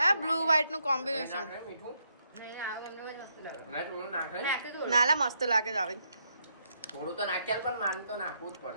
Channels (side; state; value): both; inverted; correlation -0.77